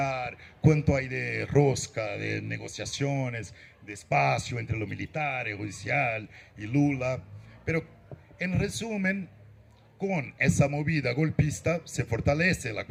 cuánto hay de rosca, de negociaciones, de espacio entre lo militar, el judicial y Lula. Pero en resumen, con esa movida golpista se fortalece la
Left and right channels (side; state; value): both; identical; correlation 1.00